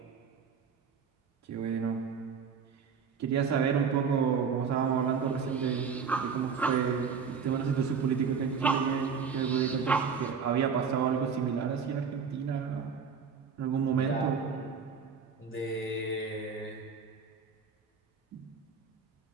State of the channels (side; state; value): left; quieter; 6.0 dB